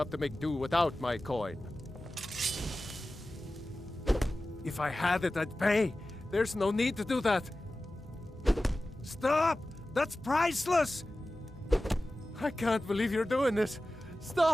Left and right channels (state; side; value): normal; both; correlation 0.95